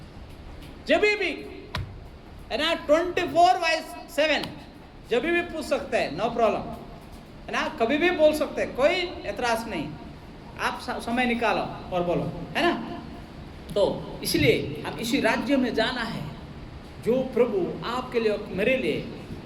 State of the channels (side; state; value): both; identical; correlation 1.00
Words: जब भी, है ना, 24/7 जब भी पूछ सकते हैं, नो प्रॉब्लम, है ना, कभी भी बोल सकते हैं, कोई एतराज नहीं, आप समय निकालो और बोलो, है ना। तो इसलिए अब इसी राज्य में जाना है जो प्रभु आपके लिए, मेरे लिए